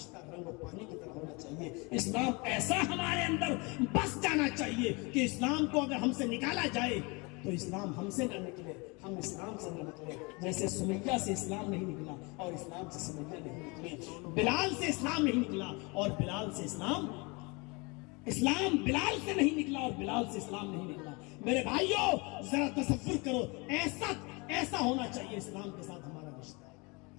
رنگ اور پانی کی طرح ہونا چاہیے. اسلام ایسا ہمارے اندر بس جانا چاہیے کہ اسلام کو اگر ہم سے نکالا جائے تو اسلام ہم سے نہ نکلے، ہم اسلام سے نہ نکلے. جیسے سمیہ سے اسلام نہیں نکلا اور اسلام سے سمیہ نہیں نکلی، بلال سے اسلام نہیں نکلا اور بلال سے اسلام بلال سے نہیں نکلا اور بلال سے اسلام نہیں نکلا. میرے بھائیوں، ذرا تصور کرو، ایسا ہونا چاہیے اسلام کے ساتھ ہمارا رشتہ.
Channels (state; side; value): quieter; right; 28.3 dB